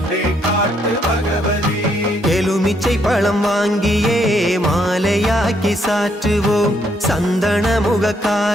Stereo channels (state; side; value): normal; both; correlation 0.73